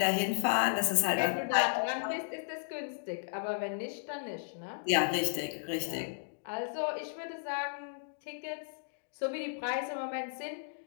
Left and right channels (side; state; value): right; silent; digital silence